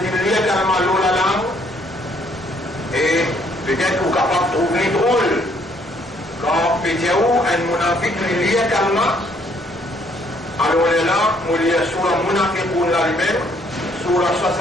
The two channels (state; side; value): normal; both; correlation 0.66